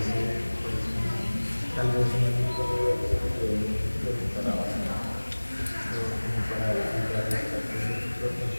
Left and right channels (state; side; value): inverted; both; correlation -1.00